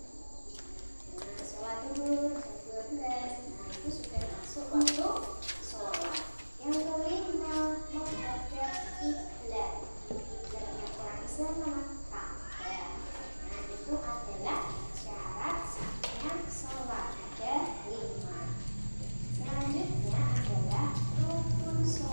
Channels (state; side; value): inverted; both; correlation -1.00